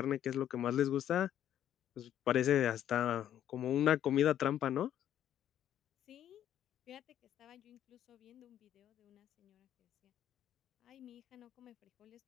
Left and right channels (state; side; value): quieter; right; 10.8 dB